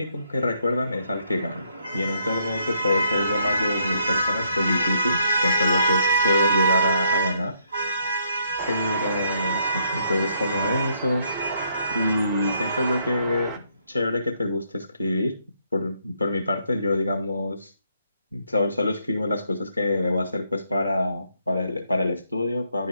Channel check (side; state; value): both; inverted; correlation -0.72